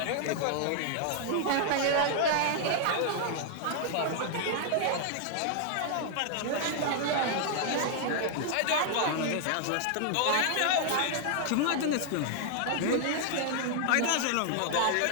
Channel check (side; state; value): both; different; correlation 0.00